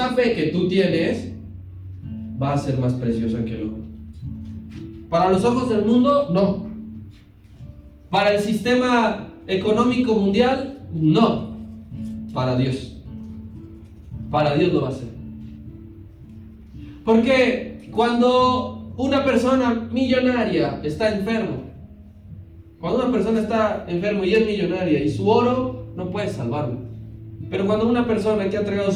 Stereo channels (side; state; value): both; identical; correlation 1.00